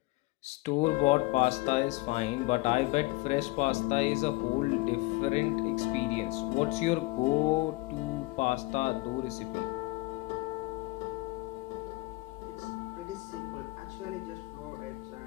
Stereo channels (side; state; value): right; quieter; 22.7 dB